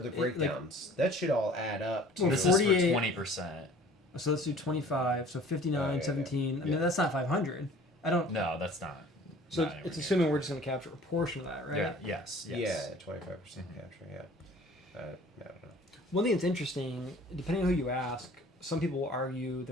breakdowns. That should all add up to. Well, This 48 is for 20%. So let's do 25. So 59, Oh, yeah, 17. yeah. I mean, that's not 500. I don't. No, that's not. So not it's anywhere assuming we're just going to capture a portion of that, right? near. Yes. Yeah, 25% capture. Yeah. I don't know. One thing that's interesting, depending on who you ask, some people will argue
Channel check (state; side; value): normal; both; correlation 0.49